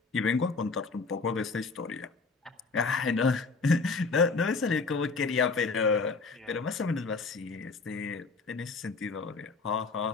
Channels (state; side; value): quieter; right; 4.3 dB